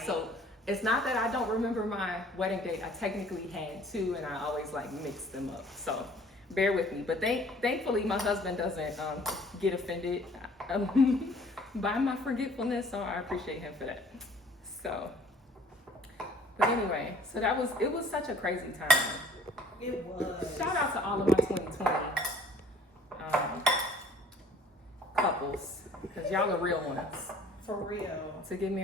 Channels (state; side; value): normal; both; correlation 0.53